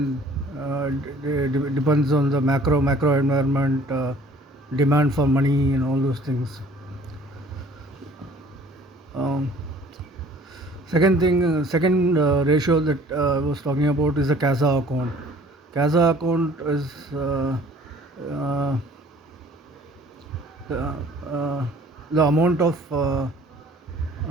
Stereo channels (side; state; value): both; normal; correlation 0.53